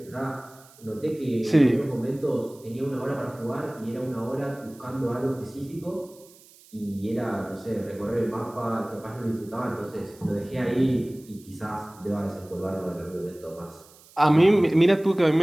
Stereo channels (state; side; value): noise; right; hiss, 25 dB below the sound